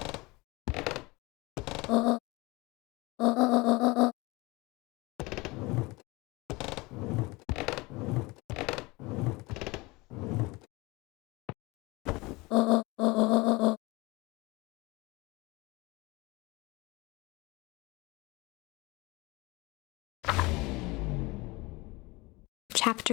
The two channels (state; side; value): quieter; right; 23.3 dB